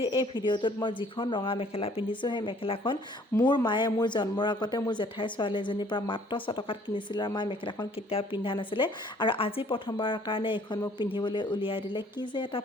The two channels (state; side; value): normal; both; correlation 0.58